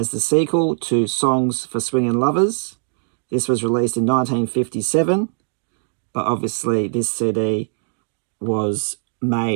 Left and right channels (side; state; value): left; silent; digital silence